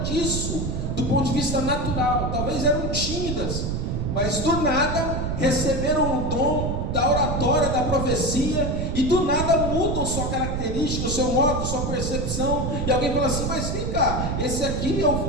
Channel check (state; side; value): noise; right; rumble, 1 dB below the sound